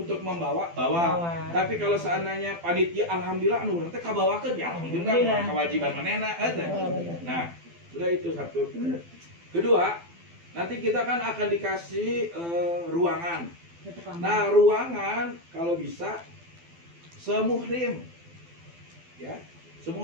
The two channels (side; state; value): left; late; 12 ms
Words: membawa, bawa. Tapi kalau seandainya panitia, alhamdulillah, nanti kabawakan ya, alhamdulillah, kewajiban manena. Nah, sudah itu satu. Kedua, nanti kita kan akan dikasih ruangan. Nah, ruangan kalau bisa semuhrim, ya,